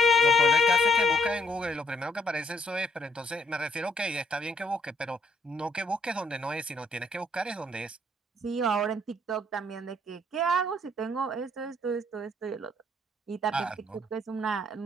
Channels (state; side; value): normal; both; correlation 0.68